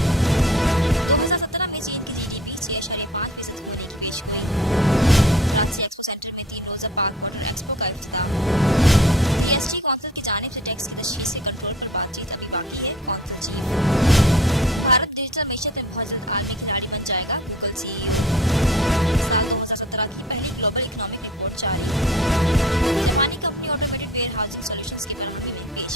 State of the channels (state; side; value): normal; both; correlation 0.45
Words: 2017 में चीन की जीडीपी 6.5% होने की पेशगोई। कराची एक्सपो सेंटर में 3 रोज़ा पाक वाटर एक्सपो का इफ्तिताह। जीएसटी कौंसिल की जानिब से टैक्स की तशखीस के कंट्रोल पर बातचीत अभी बाकी है, कौंसिल चीफ। भारत डिजिटल मीशत में बहुत जल्द आलमी खिलाड़ी बन जाएगा, गूगल सीईओ। साल 2017 की पहली ग्लोबल इकोनॉमिक रिपोर्ट जारी। जापानी company automated warehousing solutions की फराहमी में